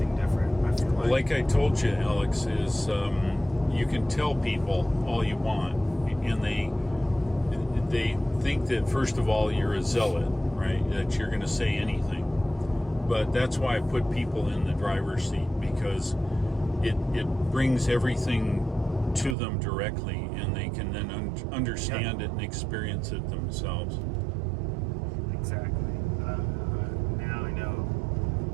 different. I feel like I told you, Alex, is you can tell people all you want, and they think that, first of all, you're a zealot, right? That you're going to say anything. But that's why I put people in the driver's seat, because it brings everything to them directly, and they can then understand it and experience it themselves. Exactly. Now I know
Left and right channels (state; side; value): drops out; left; at 19.4 s